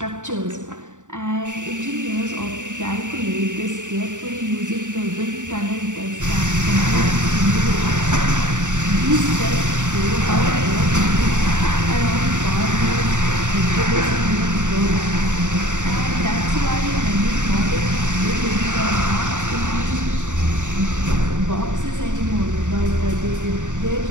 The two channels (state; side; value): late; left; 0.86 ms